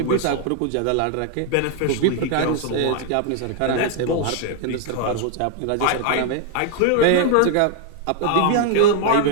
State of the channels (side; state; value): both; different; correlation 0.00